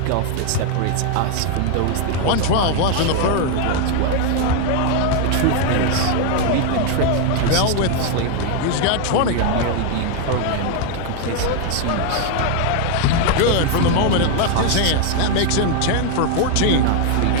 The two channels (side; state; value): both; different; correlation 0.01